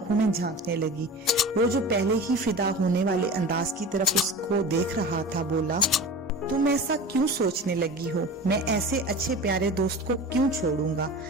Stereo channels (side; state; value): both; normal; correlation 0.34